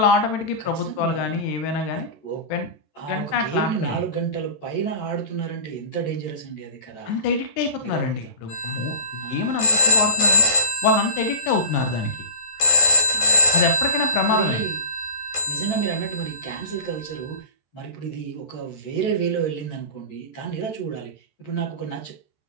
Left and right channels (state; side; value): late; right; 14 ms